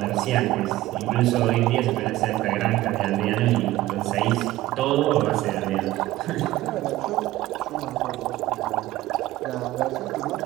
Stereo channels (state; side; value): quieter; left; 16.3 dB